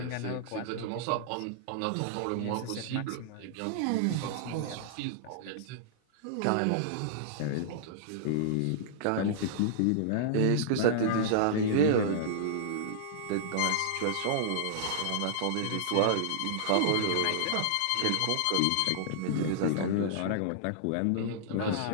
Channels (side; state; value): both; different; correlation -0.01